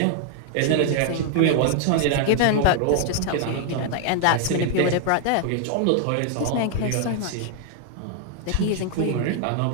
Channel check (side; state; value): both; different; correlation 0.00